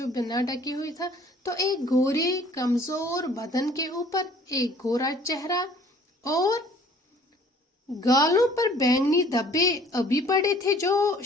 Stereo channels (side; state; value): both; normal; correlation 0.54